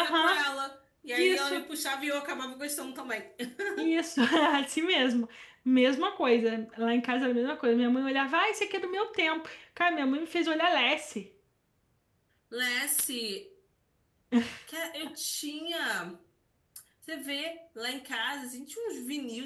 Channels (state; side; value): identical; both; correlation 1.00